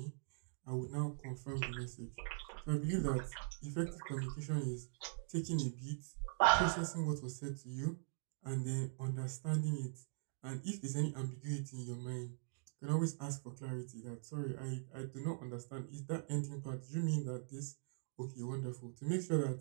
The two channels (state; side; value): silent; left; digital silence